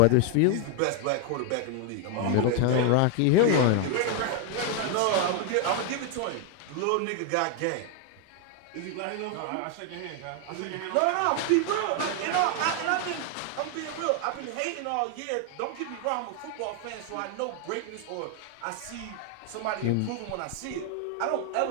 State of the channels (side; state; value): both; different; correlation 0.01